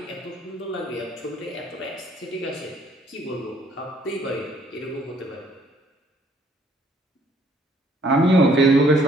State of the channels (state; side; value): normal; both; correlation 0.63